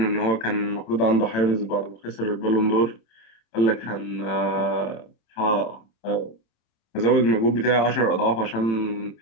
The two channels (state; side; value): late; right; 27 ms